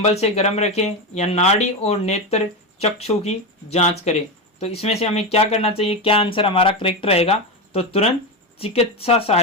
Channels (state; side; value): normal; both; correlation 0.15